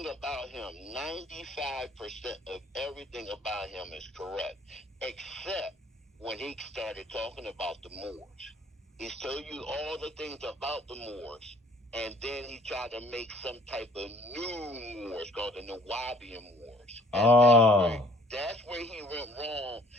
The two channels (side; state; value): both; normal; correlation 0.57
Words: about him. 95% of everything about him is correct, except when he started talking about the Moors. He's told you all the things about the Moors, and then he tried to make some type of new Moors called the Nawabian Moors, and Oh. that's where he went wrong.